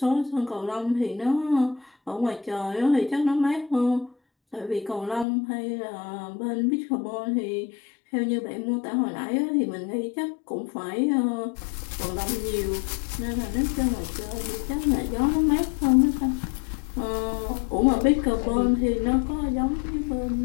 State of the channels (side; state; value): right; drops out; at 5.2 s